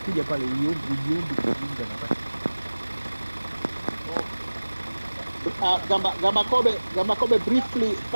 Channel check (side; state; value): both; inverted; correlation -1.00